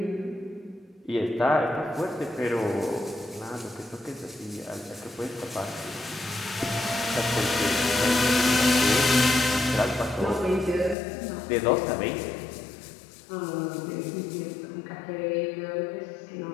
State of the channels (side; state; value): right; drops out; at 11.0 s